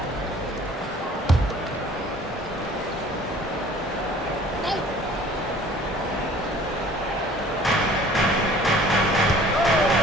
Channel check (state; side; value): normal; both; correlation 0.51